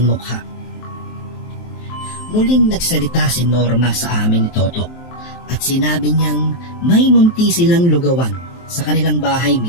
mukha. Muling nagsalita si Norma sa amin ni Toto at sinabi niyang may munti silang lugawan sa kanilang bahay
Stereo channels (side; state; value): right; late; 23 ms